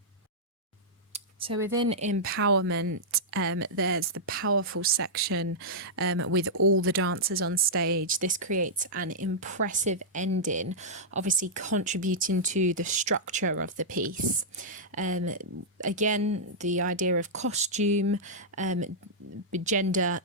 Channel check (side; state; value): both; normal; correlation -0.10